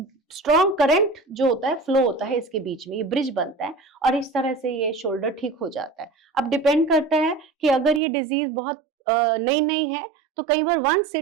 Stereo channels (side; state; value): left; drops out; at 8.0 s